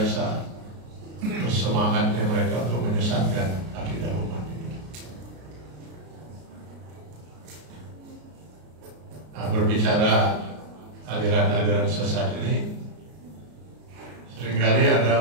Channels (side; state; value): left; late; 33 ms